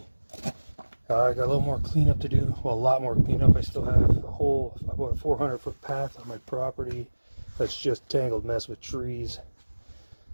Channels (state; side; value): inverted; both; correlation -1.00